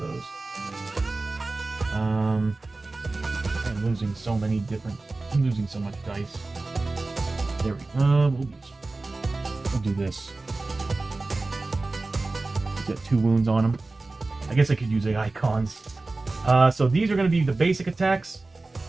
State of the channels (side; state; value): left; quieter; 3.3 dB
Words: I'm losing so many different. I'm losing so much dice. There we go. We'll do this. He's got 2 wounds on him. I guess I could use the icons. So these are going to be the basic attacks.